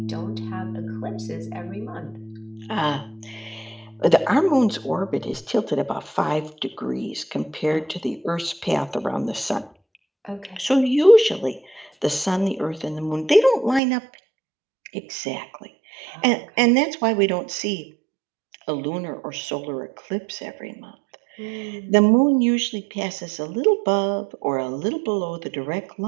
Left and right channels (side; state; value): left; drops out; at 13.8 s